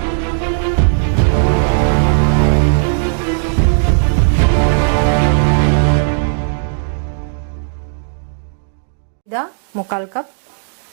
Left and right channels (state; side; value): silent; left; digital silence